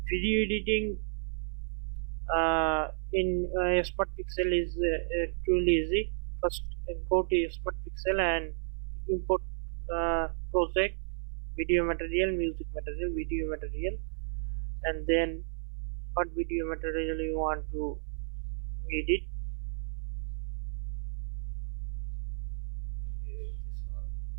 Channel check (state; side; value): silent; left; 56 dB below the other